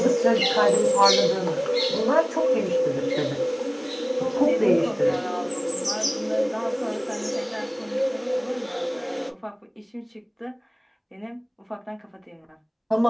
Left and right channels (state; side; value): identical; both; correlation 1.00